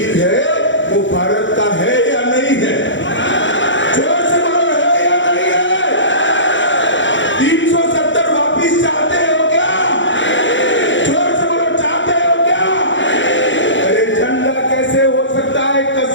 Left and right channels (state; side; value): late; right; 0.54 ms